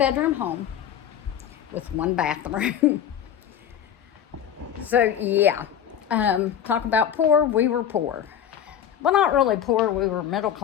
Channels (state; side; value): quieter; right; 9.3 dB